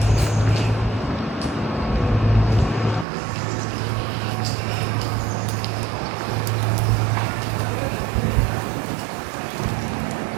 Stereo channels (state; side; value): drops out; left; at 3.1 s